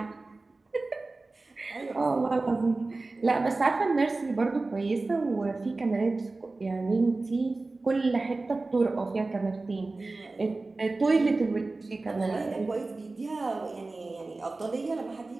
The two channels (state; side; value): quieter; left; 3.4 dB